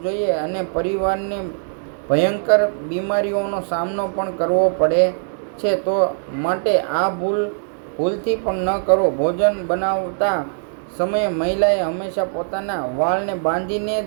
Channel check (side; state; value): left; silent; digital silence